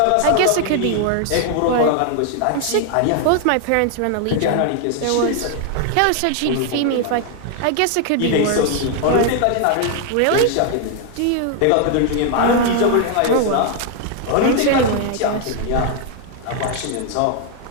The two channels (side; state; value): both; different; correlation 0.00